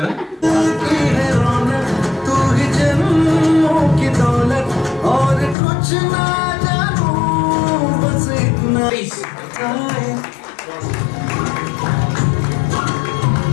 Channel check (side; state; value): right; drops out; at 5.6 s